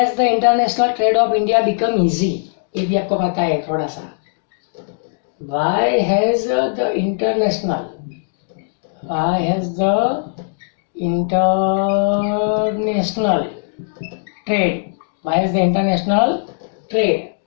the international trade of India become easy? ये भी आपको पता है थोड़ा सा। Why has the international trade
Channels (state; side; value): silent; right; digital silence